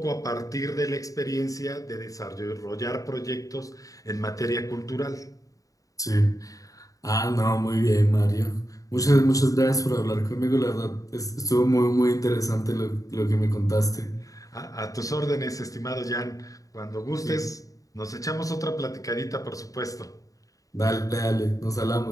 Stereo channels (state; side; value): late; right; 0.17 ms